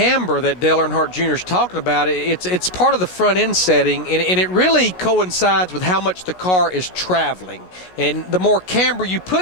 that Dale Earnhardt Jr. is talking about, it's part of the front end setting, and it really coincides with how much the car is traveling. And the more camber you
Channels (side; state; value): right; late; 16 ms